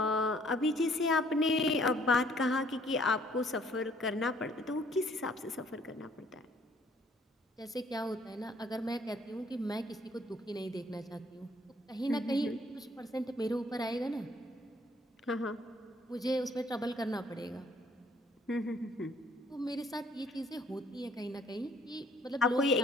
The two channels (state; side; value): normal; both; correlation 0.61